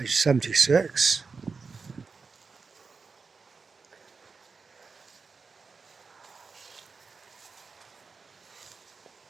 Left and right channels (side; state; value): left; quieter; 4.8 dB